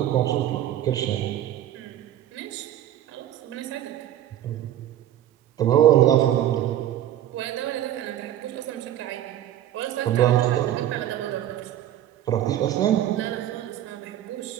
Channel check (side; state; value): left; quieter; 11.9 dB